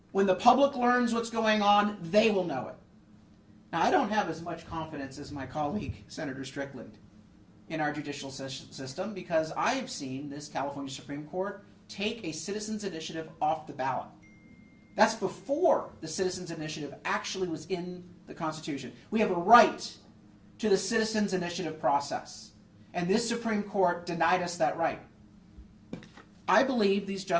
When the public learns what's going on, they will know it. Now, I don't have as much confidence as my colleague, Senator Strickland, in our judicial system, because I've seen this California Supreme Court take a citizens' initiative off the ballot. That's before the citizens' initiative actually was in the Constitution. We have a right to the citizens' initiative process, and this Supreme Court denied us that right. I believe these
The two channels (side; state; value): both; identical; correlation 1.00